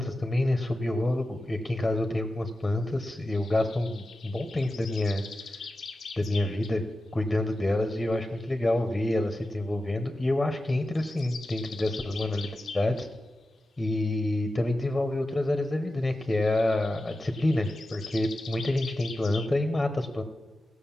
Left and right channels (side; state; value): both; normal; correlation 0.92